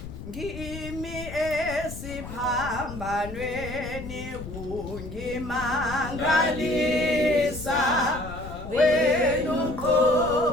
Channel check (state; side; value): noise; left; rumble, 11 dB below the sound